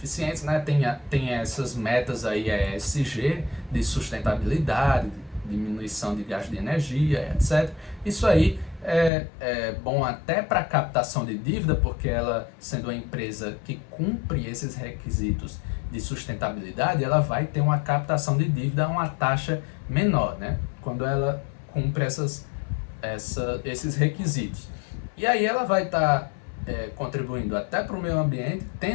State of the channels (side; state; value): right; drops out; at 9.1 s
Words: né? Tem essas metas aí, ESG, de sustentabilidade, diminuição de gasto de energia, etc. Isso aí é bom até para captação de dívida, porque ela, sendo uma empresa que cumpre esses requisitos de sustentabilidade, ela vai ter uma captação de dívida a uma taxa menor, né? Quando ela cumpre esses requisitos. E aí ela vai estar contribuindo até para o meio ambiente,